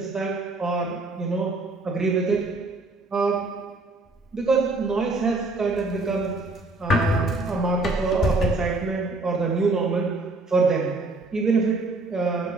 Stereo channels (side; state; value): left; quieter; 3.1 dB